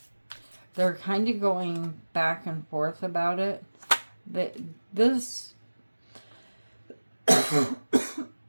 They're kind of going back and forth about it. This...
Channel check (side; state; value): both; inverted; correlation -1.00